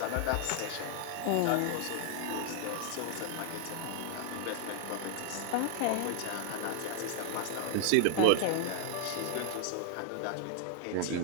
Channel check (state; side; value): different; both; correlation 0.00